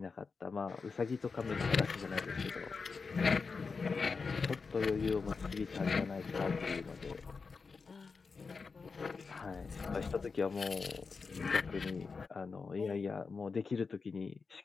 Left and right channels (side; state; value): right; quieter; 4.8 dB